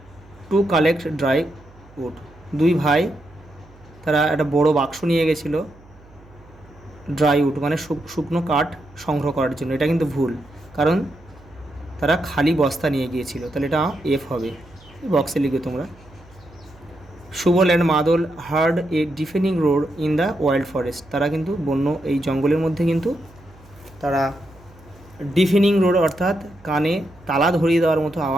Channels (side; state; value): right; noise; hum, 25 dB below the sound